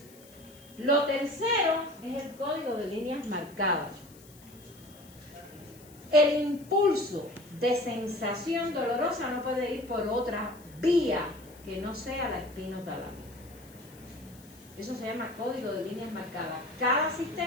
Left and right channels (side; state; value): left; noise; hiss, 23 dB below the sound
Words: Lo tercero es el código de líneas marcadas. El impulso de sensación dolorosa no puede ir por otra vía que no sea la espinotalámica. Eso se llama código de líneas marcadas. Cada